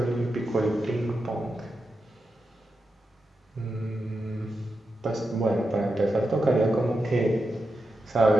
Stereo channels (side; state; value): both; normal; correlation 0.88